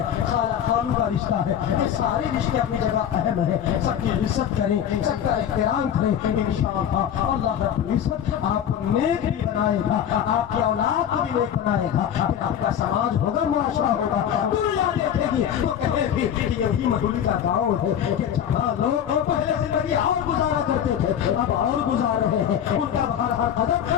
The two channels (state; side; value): quieter; right; 9.4 dB